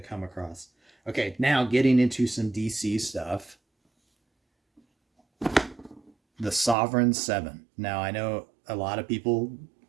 come across. Okay, now getting into some DC stuff. The Sovereign 7. Now, I know a lot of people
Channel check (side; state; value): left; drops out; at 6.8 s